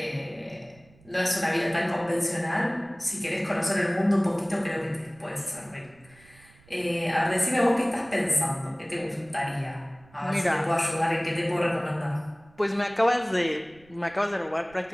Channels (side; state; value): right; noise; rumble, 27 dB below the sound